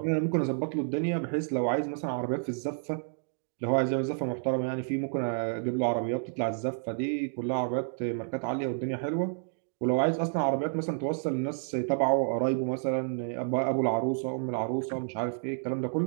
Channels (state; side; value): silent; left; digital silence